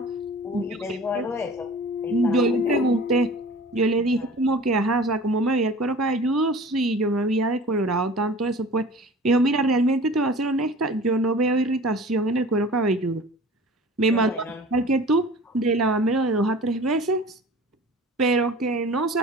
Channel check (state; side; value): normal; both; correlation 0.42